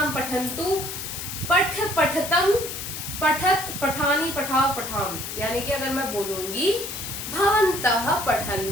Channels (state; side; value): noise; left; hiss, 7 dB below the sound